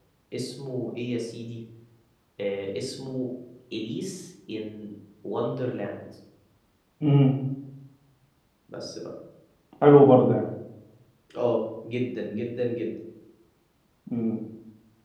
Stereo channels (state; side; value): identical; both; correlation 1.00